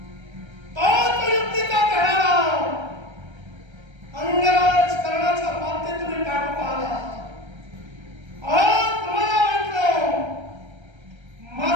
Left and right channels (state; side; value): late; left; 1.3 ms